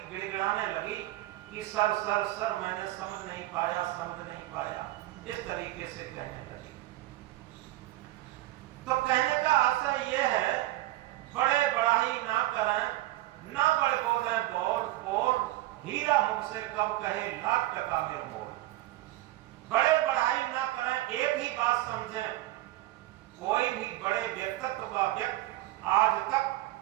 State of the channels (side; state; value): left; quieter; 16.6 dB